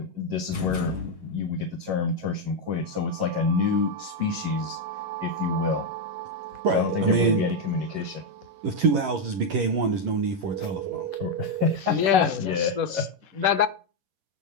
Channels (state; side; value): late; left; 11 ms